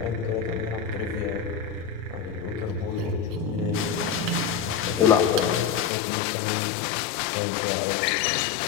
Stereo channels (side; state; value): right; drops out; at 5.9 s